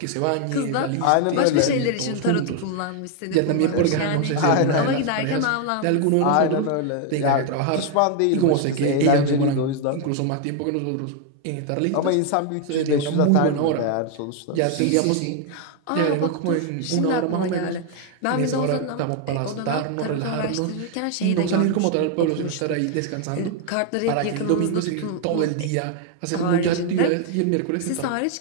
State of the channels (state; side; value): different; both; correlation 0.00